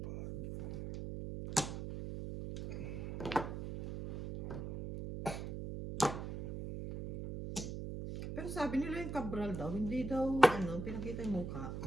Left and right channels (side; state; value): right; noise; hum, 6 dB below the sound